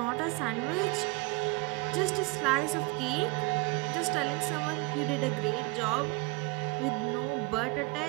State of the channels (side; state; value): left; quieter; 25.3 dB